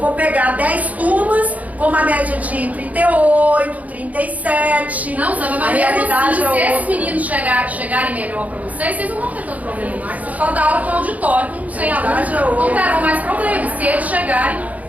pegar 10 turmas com uma média de 38, 37. Não, sabe, mas mesmo assim, se esses meninos chegarem melhor para vocês não vão ter tanto problema mais. Vocês podem dar aula com auditório, sem alunos, não terão mais problemas. Se eles chegarem,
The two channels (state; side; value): late; left; 0.073 ms